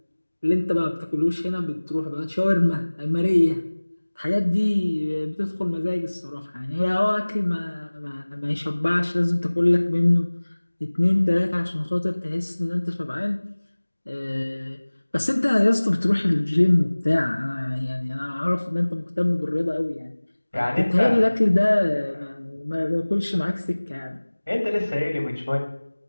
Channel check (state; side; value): inverted; both; correlation -1.00